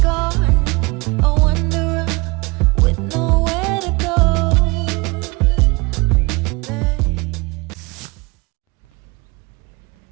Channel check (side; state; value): left; quieter; 26.3 dB